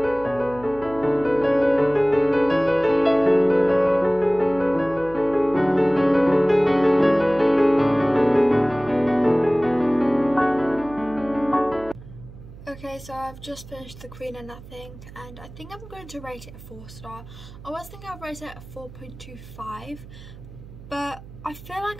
Okay, so I've just finished The Queen of Nothing, and I think I'm going to rate it a 4-star. I was thinking I'd rate it a 4.25, but I feel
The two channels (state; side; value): noise; right; hum, 17 dB below the sound